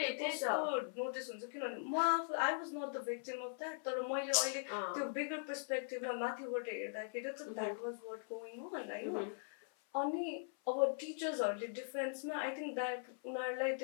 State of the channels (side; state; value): right; silent; 50 dB below the other